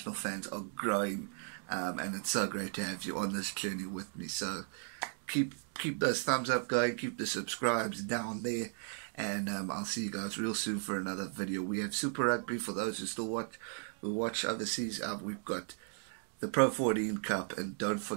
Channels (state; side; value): silent; left; 54 dB below the other